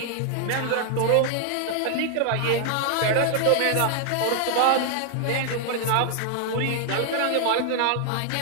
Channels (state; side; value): different; both; correlation 0.00